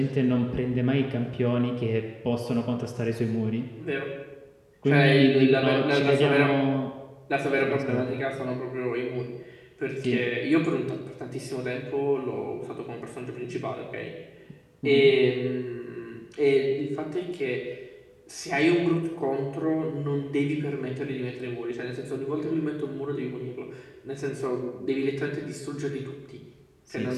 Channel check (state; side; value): identical; both; correlation 1.00